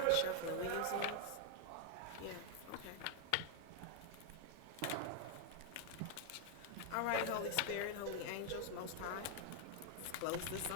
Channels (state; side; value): different; both; correlation 0.00